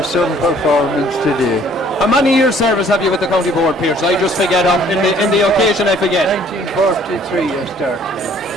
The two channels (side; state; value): both; normal; correlation 0.58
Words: some performance today. How many years service have you with the county board, Pierce? I just forget in the occasion I forget. 1943 I started,